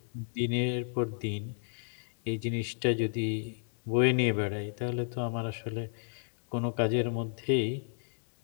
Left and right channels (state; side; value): silent; right; digital silence